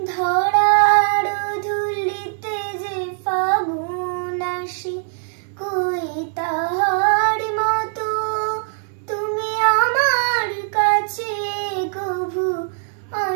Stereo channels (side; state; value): left; silent; digital silence